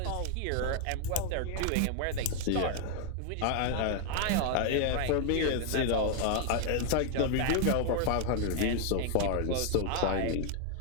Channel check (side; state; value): both; different; correlation 0.00